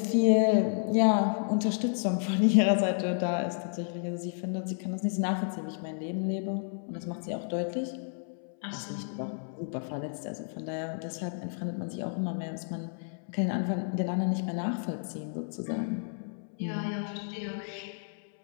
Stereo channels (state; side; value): silent; right; 57 dB below the other